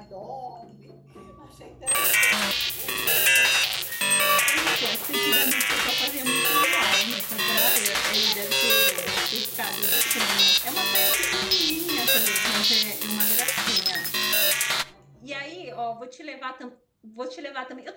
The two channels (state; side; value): identical; both; correlation 1.00